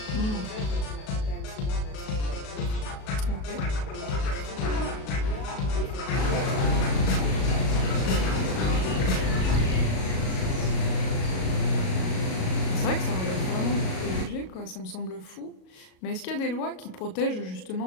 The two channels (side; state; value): right; late; 37 ms